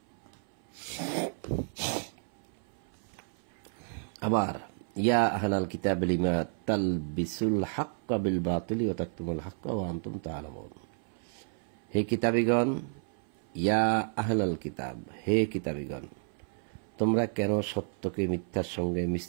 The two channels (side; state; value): left; silent; 57 dB below the other